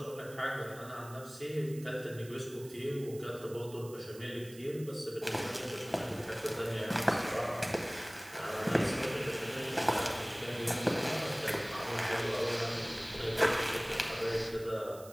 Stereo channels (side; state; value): right; noise; hiss, 19 dB below the sound